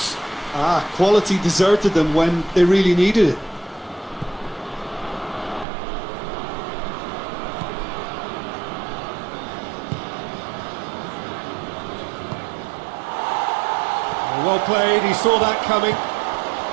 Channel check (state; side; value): drops out; left; at 5.7 s